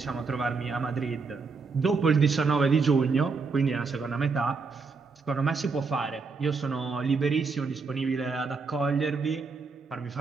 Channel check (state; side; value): quieter; left; 4.6 dB